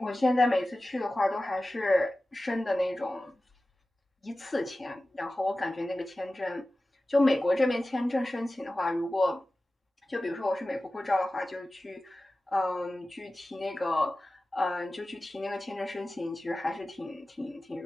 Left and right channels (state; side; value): normal; both; correlation 0.96